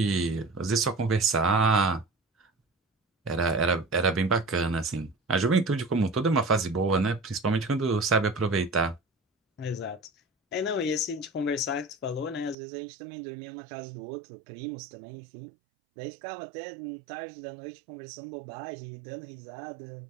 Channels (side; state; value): left; drops out; at 12.6 s